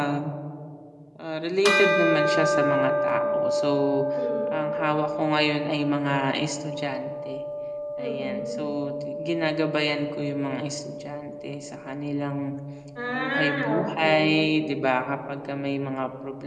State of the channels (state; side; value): identical; both; correlation 1.00